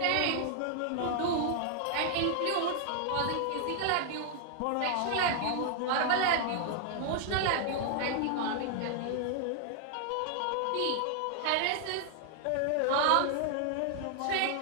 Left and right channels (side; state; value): both; different; correlation 0.00